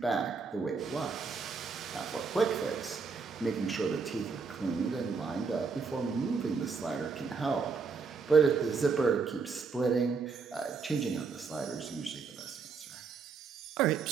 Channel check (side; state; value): left; quieter; 5.0 dB